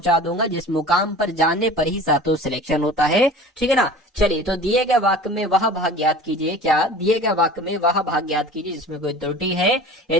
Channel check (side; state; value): both; normal; correlation 0.40